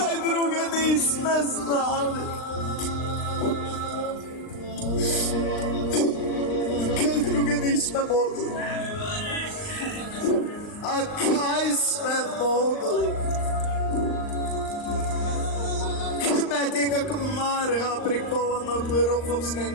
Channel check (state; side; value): late; right; 39 ms